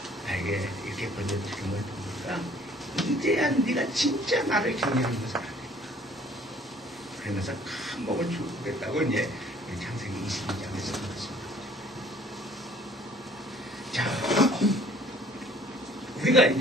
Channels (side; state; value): both; normal; correlation 0.56